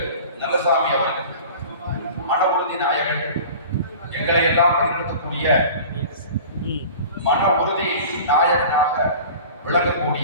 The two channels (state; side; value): inverted; both; correlation -0.40